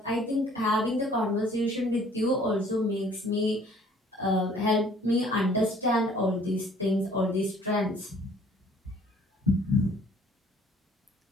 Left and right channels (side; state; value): both; normal; correlation 0.57